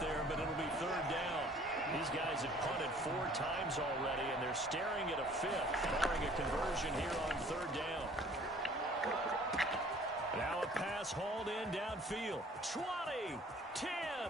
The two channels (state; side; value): normal; both; correlation 0.53